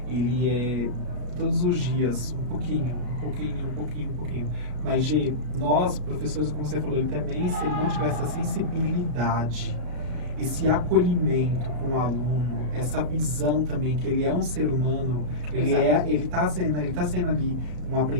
ele é todos os dias, um pouquinho. Mas, Gi, nós, professores, como você falou, ele também, se ele não tiver essa sensibilidade, esse acolhimento com o aluno, essa visão também que ele é um ser humano, ele tá sendo ali um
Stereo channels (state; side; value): late; left; 33 ms